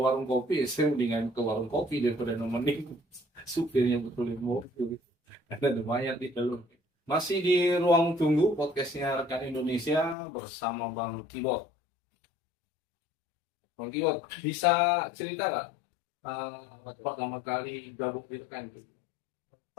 warung kopi, saya mendingan ke warung kopi daripada nemenin supirnya betulin mobil karena ada mayat di dalam. Masih di ruang tunggu podcastnya Rekan Indonesia bersama Bang Kibot. Bang Kibot, bisa cerita nggak pertama kali gabung di Rekan?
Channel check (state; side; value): drops out; right; at 10.2 s